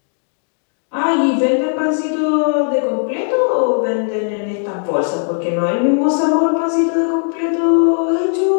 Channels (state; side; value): silent; right; 64 dB below the other